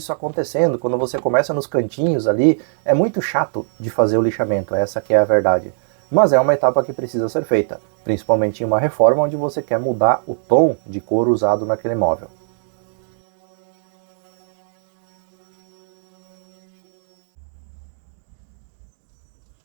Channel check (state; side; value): silent; left; digital silence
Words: acontecendo. Quando você começa nos cantinhos ali, é muito chato de fazer o lixamento, essa que é a verdade. Mas é uma etapa que precisa ser feita, principalmente em uma reforma onde você quer mudar o tom de cor usado naquele móvel.